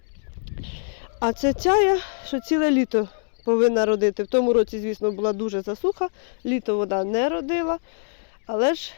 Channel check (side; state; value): right; silent; digital silence